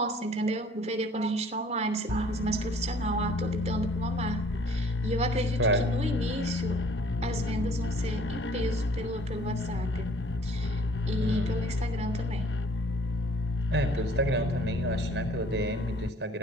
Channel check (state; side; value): normal; both; correlation 0.56